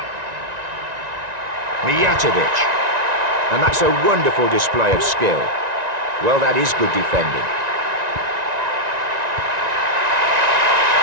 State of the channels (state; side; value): late; left; 1.9 ms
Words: 𝕤𝕒𝕒𝕒𝕒𝕒. And that's a wonderful display of skill. Well, that is good defending.